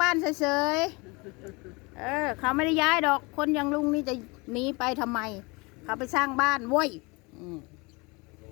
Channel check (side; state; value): right; quieter; 26.9 dB